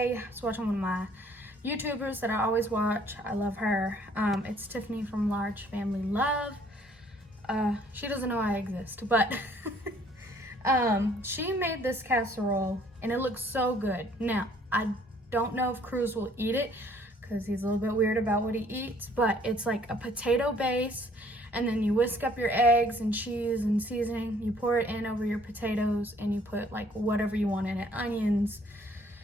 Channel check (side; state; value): both; normal; correlation 0.60